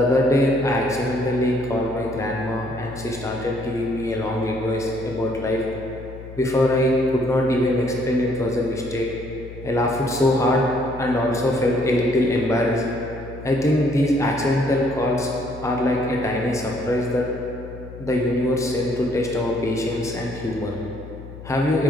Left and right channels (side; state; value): left; noise; hum, 14 dB below the sound